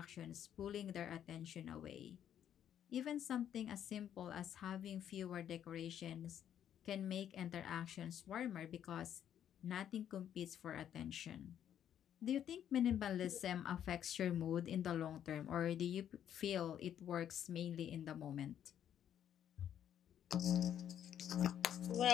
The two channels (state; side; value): quieter; right; 9.9 dB